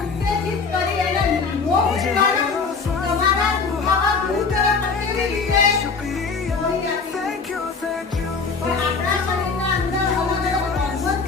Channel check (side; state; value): right; quieter; 4.8 dB